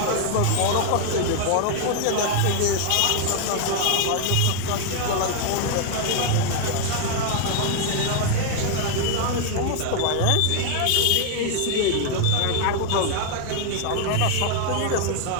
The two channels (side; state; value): both; different; correlation 0.00